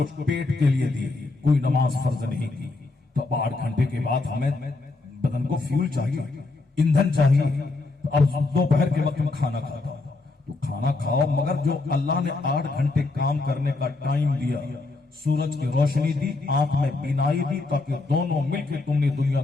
पेट के लिए दिए, कोई नमाज फर्ज नहीं की, तो 8 घंटे के बाद हमें बदन को फ्यूल चाहिए, ईंधन चाहिए। तो अब दोपहर के वक्त में खाना खाता हूं, तो खाना खाओ, मगर जो अल्लाह ने 8 घंटे काम करने का टाइम दिया, सूरज की रोशनी दी, आंख में बीनाई दी, ताकि दोनों मिलकर तुमने दुनिया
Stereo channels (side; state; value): right; quieter; 3.4 dB